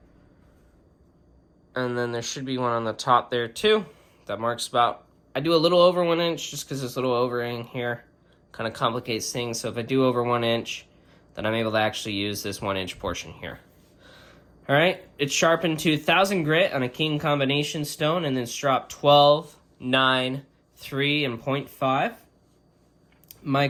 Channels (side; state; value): both; identical; correlation 1.00